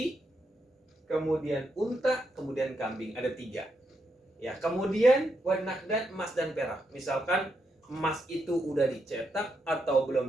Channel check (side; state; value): both; normal; correlation 0.81